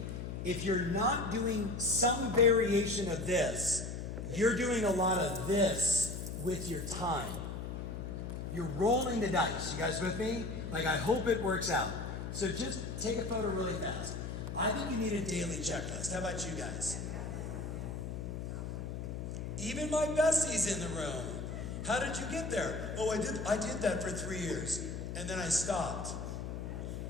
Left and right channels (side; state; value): left; noise; hum, 6 dB below the sound